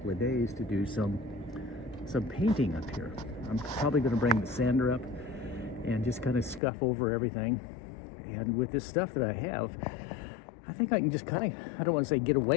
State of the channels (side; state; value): right; drops out; at 6.6 s